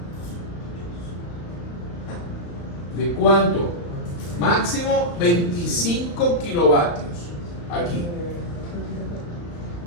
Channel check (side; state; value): right; late; 35 ms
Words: ¿de cuánto? Máximo 25 kilovatios aquí.